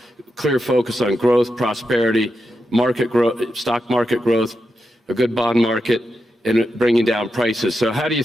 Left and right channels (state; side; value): normal; both; correlation 0.87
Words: clear focus on growth, prosperity, market growth, stock market growth, a good bond market, and bringing down prices. So how do you